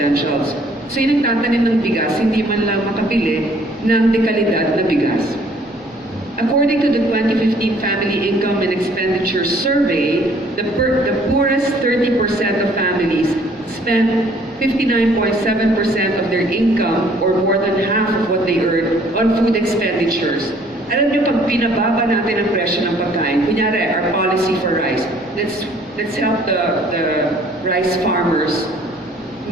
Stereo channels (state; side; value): normal; both; correlation 0.59